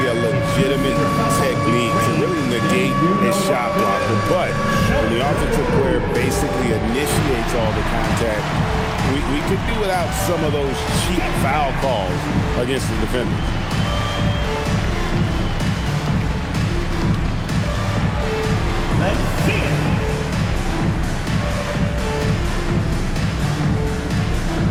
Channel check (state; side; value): identical; both; correlation 1.00